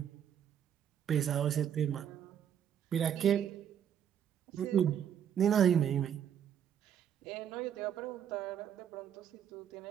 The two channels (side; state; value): left; quieter; 9.2 dB